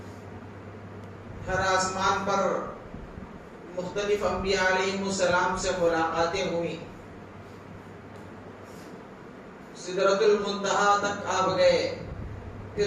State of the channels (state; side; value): identical; both; correlation 1.00